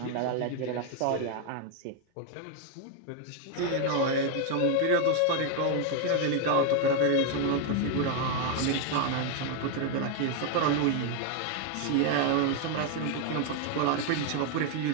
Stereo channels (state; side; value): different; both; correlation 0.01